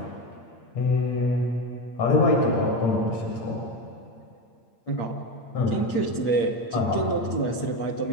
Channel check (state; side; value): late; right; 8.7 ms